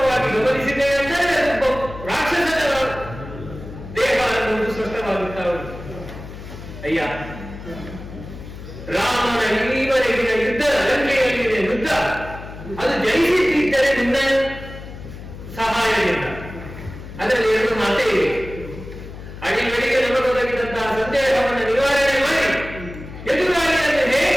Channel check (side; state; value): left; noise; hum, 13 dB below the sound